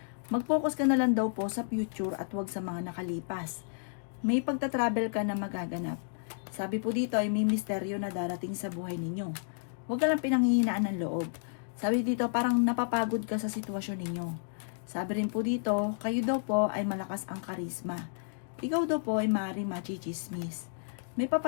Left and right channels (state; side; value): silent; right; digital silence